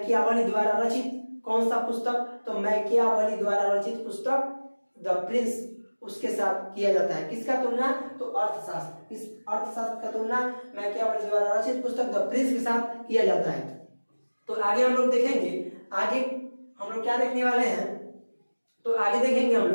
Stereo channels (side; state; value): both; inverted; correlation -1.00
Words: द्वारा रचित कौन सा पुस्तक? तो मैकियावेली द्वारा रचित पुस्तक द प्रिंस उसके साथ किया जाता है। किसका तुलना? तो अर्थशास्त्र। इस अर्थशास्त्र का तुलना मैकियावेली द्वारा रचित पुस्तक द प्रिंस के साथ किया जाता है। तो आगे हम लोग देखेंगे, आगे हम लोग क्या देखने वाले हैं? तो आगे देखेंगे हम